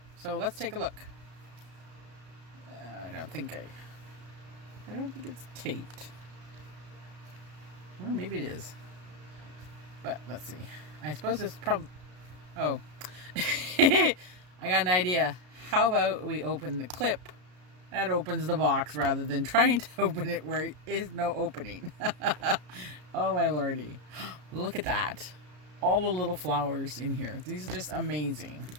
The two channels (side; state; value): left; late; 33 ms